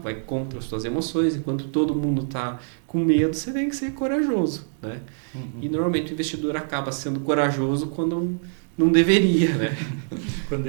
contra as suas emoções, enquanto todo mundo está com medo, você tem que ser corajoso, né? Uhum. E normalmente o investidor acaba sendo corajoso quando não deveria, né? Quando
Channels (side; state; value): left; silent; digital silence